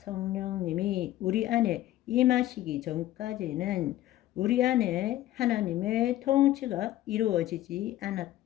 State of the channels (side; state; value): right; quieter; 14.4 dB